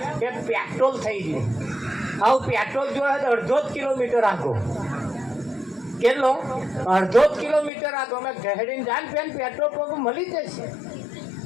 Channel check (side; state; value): right; drops out; at 7.7 s